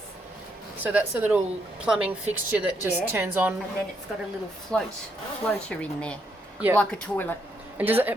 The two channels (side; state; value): both; normal; correlation 0.76